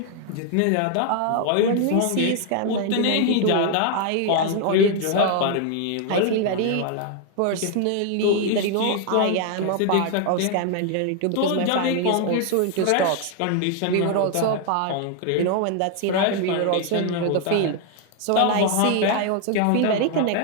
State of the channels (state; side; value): different; both; correlation 0.00